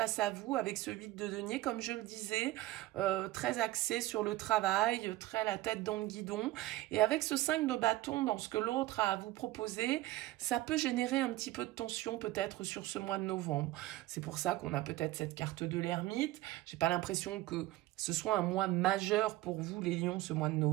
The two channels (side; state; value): left; quieter; 17.1 dB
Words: à vous avec ce 8 de denier, comme je le disais, très axé sur le travail, très la tête dans le guidon. Et avec ce 5 de bâton dans ce que l'autre a à vous proposer, ça peut générer un petit peu de tension peut-être sur ce mois de novembre. C'est pour ça qu'on a peut-être cette carte de l'ermite. J'ai pas l'impression que ce soit un mois majeur pour vous les lions ce mois de